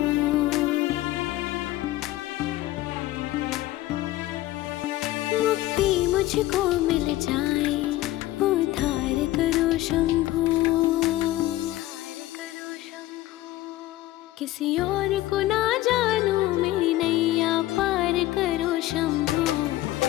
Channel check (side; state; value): right; quieter; 16.3 dB